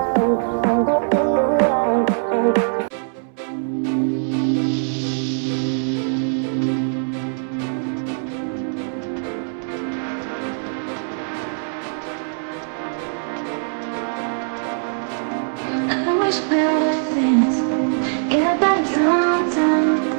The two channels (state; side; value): silent; left; 65 dB below the other